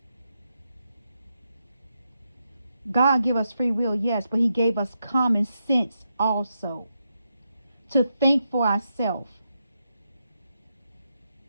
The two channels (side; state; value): both; inverted; correlation -0.84